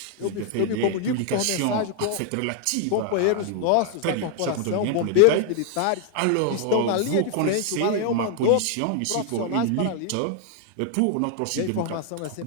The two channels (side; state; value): both; different; correlation 0.00